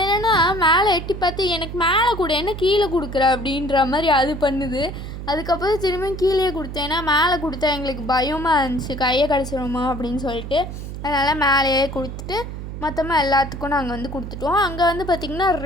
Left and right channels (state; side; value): noise; right; hum, 8 dB below the sound